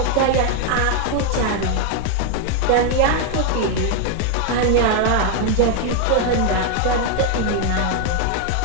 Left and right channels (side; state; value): both; different; correlation 0.01